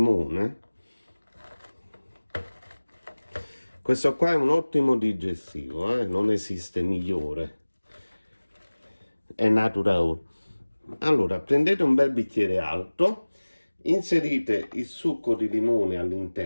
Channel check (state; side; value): inverted; both; correlation -1.00